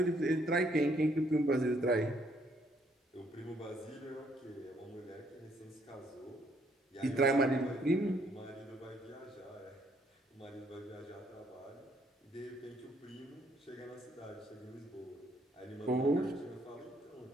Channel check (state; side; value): normal; both; correlation 0.68